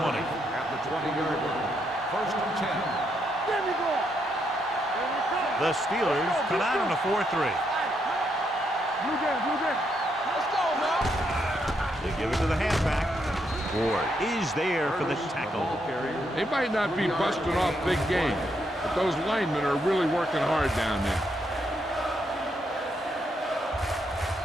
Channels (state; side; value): normal; both; correlation 0.77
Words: At the 20-yard line. First and 10. The Steelers come out on a 4-3. Let's go, man. They give it to the halfback. Ward is there for the tackle. They might not be busting off big game, but those linemen are really working hard down there.